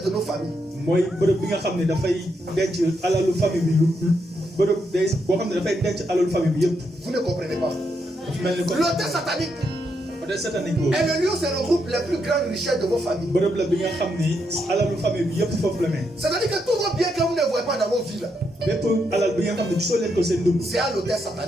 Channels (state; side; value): normal; both; correlation 0.80